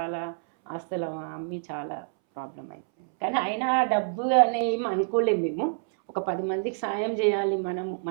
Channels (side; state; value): left; silent; 60 dB below the other